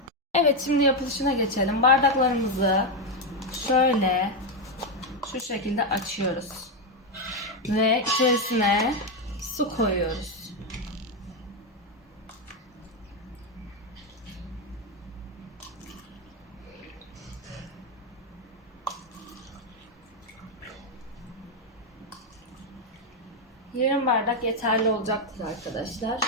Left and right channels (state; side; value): normal; both; correlation 0.05